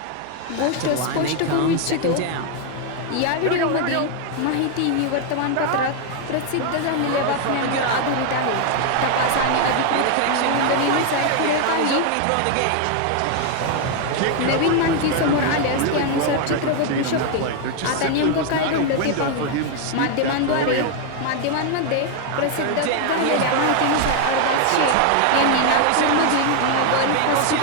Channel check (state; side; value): different; both; correlation 0.00